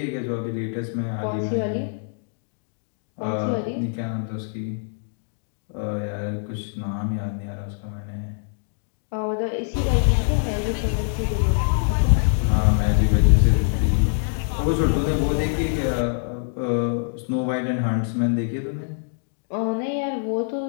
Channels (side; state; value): right; silent; digital silence